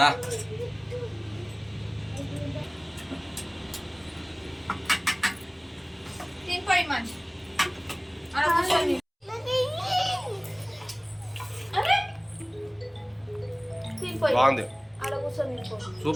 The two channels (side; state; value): both; identical; correlation 1.00